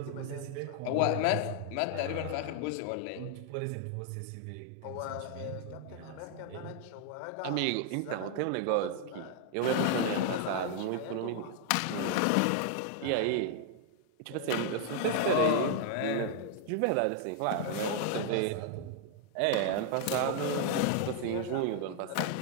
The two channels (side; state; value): both; different; correlation 0.00